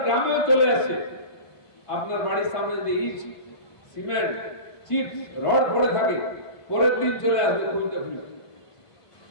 গ্রামেও চলে আসছে। আপনার বাড়ির সামনে যদি ইট, সিমেন্ট, চিপস, রড পড়ে থাকে, পরের দিন চলে আসবে খুলতে খুলতে।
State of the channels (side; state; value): right; late; 1.5 ms